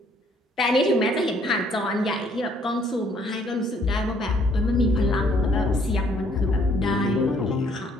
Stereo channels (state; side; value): normal; both; correlation 0.64